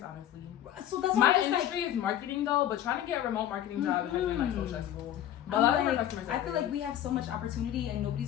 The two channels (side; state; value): right; quieter; 11.6 dB